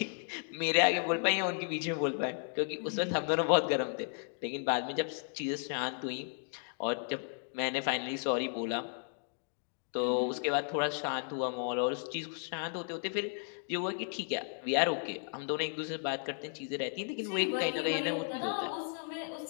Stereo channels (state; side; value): silent; right; 55 dB below the other